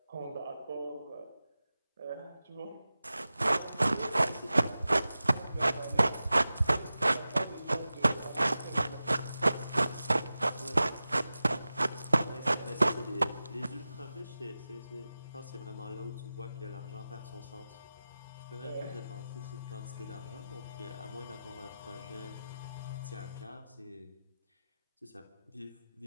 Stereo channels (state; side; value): inverted; both; correlation -0.95